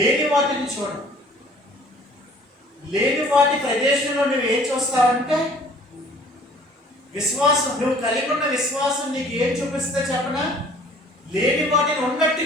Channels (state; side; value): normal; both; correlation 0.52